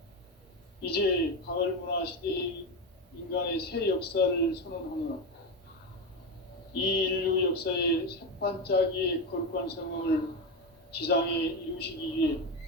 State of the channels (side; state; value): both; normal; correlation 0.15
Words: 이제 가을 문화 시대의 인간의 새 역사를 선언하노라. 이 인류 역사의 새판짜기의 거룩한 성음을 지상에 이루시기 위해